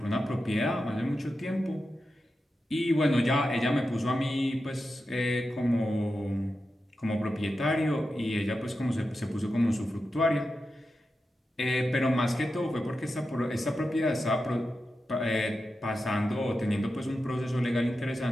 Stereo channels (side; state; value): both; normal; correlation 0.90